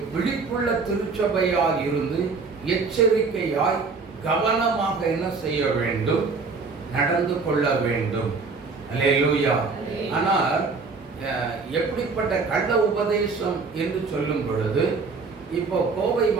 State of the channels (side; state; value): left; quieter; 4.5 dB